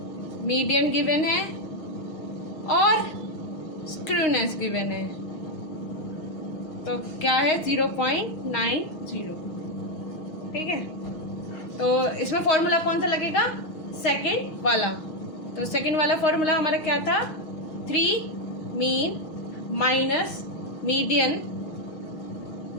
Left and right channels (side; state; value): right; late; 6.3 ms